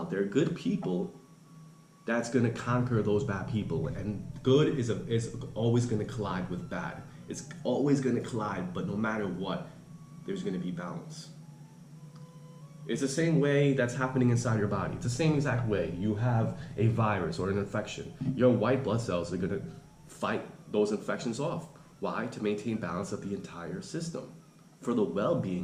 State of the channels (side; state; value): both; identical; correlation 1.00